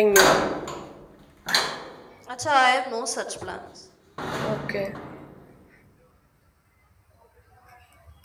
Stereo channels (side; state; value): both; identical; correlation 1.00